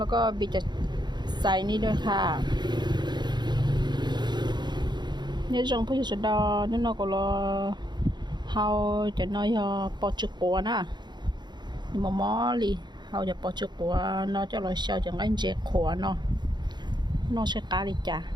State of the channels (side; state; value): left; late; 0.21 ms